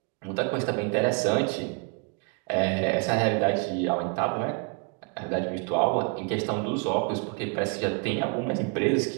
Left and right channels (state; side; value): quieter; left; 32.2 dB